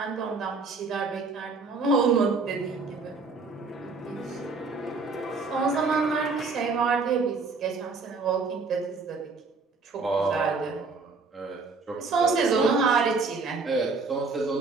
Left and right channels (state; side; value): quieter; left; 4.1 dB